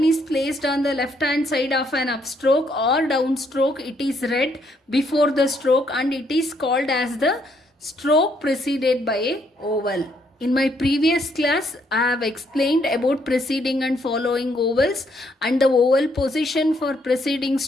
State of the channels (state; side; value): normal; both; correlation 0.71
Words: is placed on the left hand side of an upstroke or downstroke, it is read before the stroke and it is called as the stroke preceded by a vowel. In my previous class, I have explained about preceding and following vowels and the vowel position for preceding